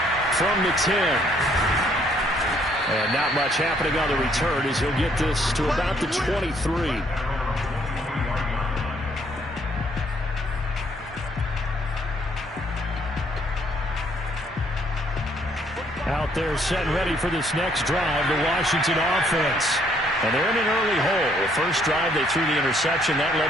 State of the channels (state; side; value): normal; both; correlation 0.66